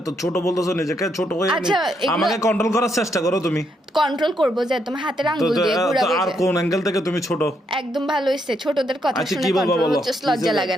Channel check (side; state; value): both; normal; correlation 0.77